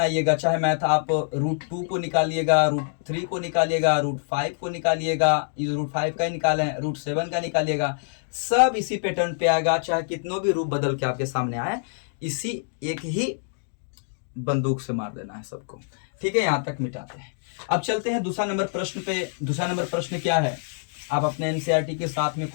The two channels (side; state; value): right; silent; digital silence